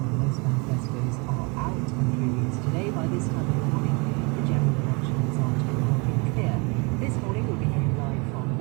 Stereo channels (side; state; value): left; quieter; 30.1 dB